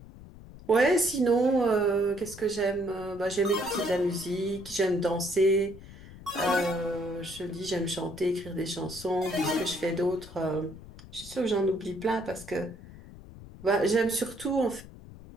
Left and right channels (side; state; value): left; noise; rumble, 17 dB below the sound